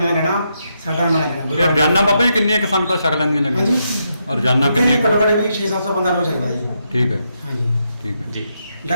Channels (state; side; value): inverted; both; correlation -0.81